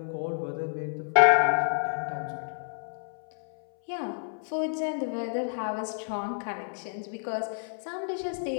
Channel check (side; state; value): right; silent; 58 dB below the other